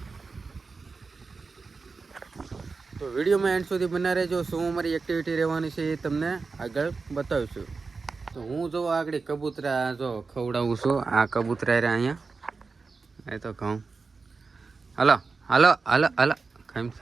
તો વિડીયોમાં એન્ડ સુધી બના રહેજો। શું અમારી એક્ટિવિટી રહેવાની છે એ તમને આગળ બતાવીશું। તો હું જો આગળ કબૂતરા જો ખવડાવું છું। આ કબૂતરા રે અહીંયા એ તો કહું હાલો હાલો હાલો હાલો ખામ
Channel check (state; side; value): quieter; left; 4.4 dB